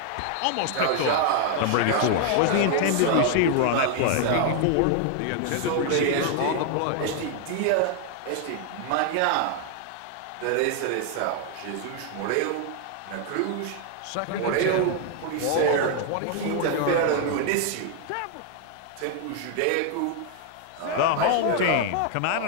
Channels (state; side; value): different; both; correlation 0.00